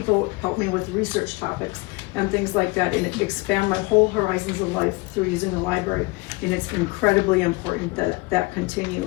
help me with research topics and things like that, and expand my whole horizons of life through using the library, and it's incredibly important that that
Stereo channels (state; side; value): quieter; right; 24.9 dB